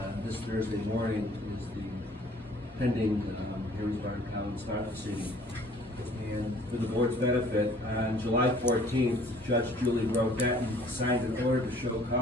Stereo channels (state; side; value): normal; both; correlation 0.55